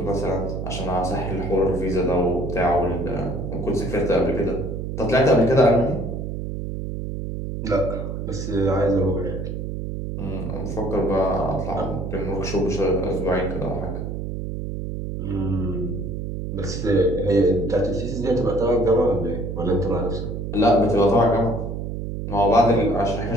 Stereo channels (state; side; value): noise; right; hum, 5 dB below the sound